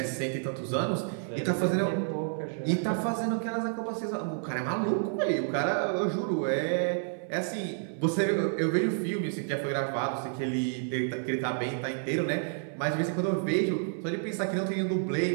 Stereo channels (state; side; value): silent; left; 58 dB below the other